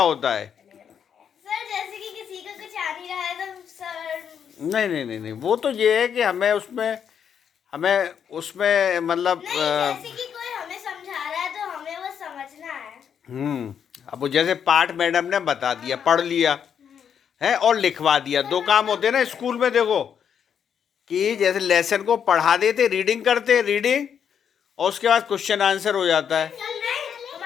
है। सर जैसे कि किसी का कुछ आ नहीं रहा है तो सर नहीं वो तो ये है कि हमें उसमें मतलब जैसे कि कोई हमें समझा रहा है तो हमें वो समझना है। अब वो जैसे पाठ मैडम ने बता दिया, पढ़ लिया है और लिखवा दिया, 2 काम होते हैं ना स्कूल में। देखो कि जैसे लेसन को पढ़ा देते, रीडिंग करते, रीडिंग, और उसके बाद क्वेश्चन आंसर हो जाता है। तो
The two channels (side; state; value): right; quieter; 7.9 dB